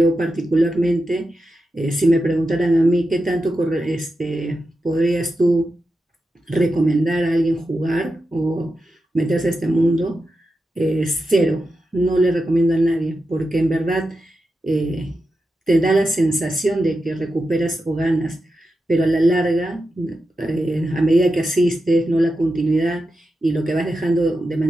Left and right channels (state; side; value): normal; both; correlation 0.89